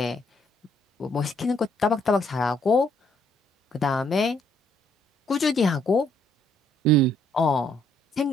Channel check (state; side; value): normal; both; correlation 0.68